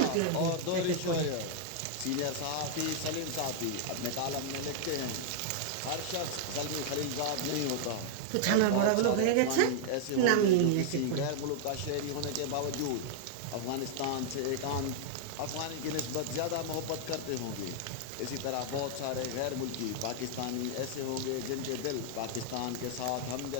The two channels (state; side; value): different; both; correlation -0.01